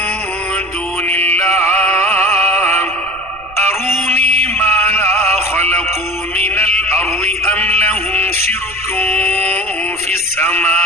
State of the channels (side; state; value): right; noise; rumble, 23 dB below the sound